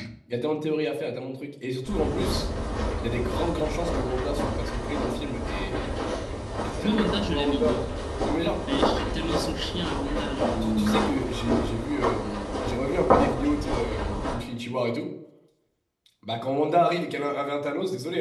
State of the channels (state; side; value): identical; both; correlation 1.00